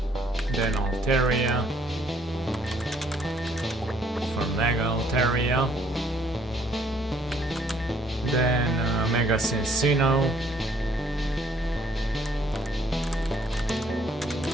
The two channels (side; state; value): both; normal; correlation 0.64